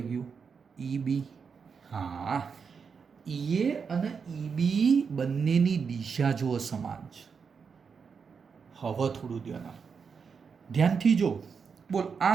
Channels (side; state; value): left; quieter; 5.9 dB